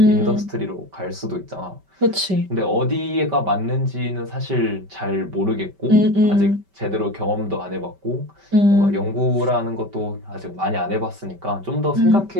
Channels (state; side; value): late; left; 5.2 ms